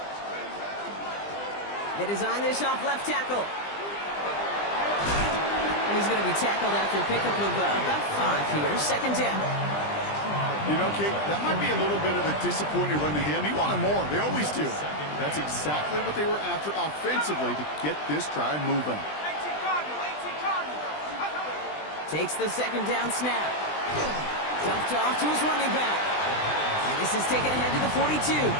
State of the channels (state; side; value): late; right; 20 ms